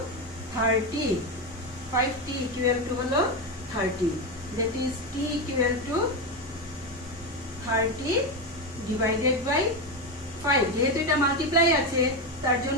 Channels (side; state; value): both; normal; correlation 0.13